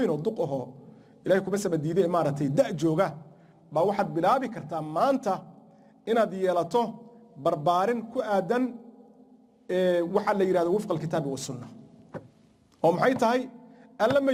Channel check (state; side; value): identical; both; correlation 1.00